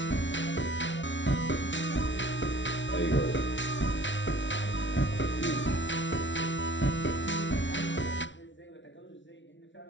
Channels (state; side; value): late; right; 0.55 ms